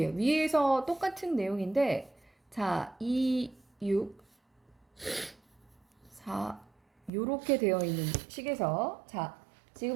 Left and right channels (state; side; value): drops out; left; at 7.1 s